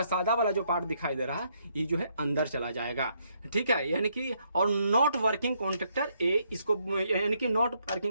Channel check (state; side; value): inverted; both; correlation -0.73